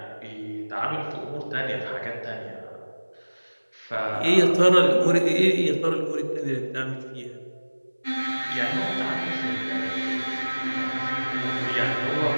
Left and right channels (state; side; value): inverted; both; correlation -1.00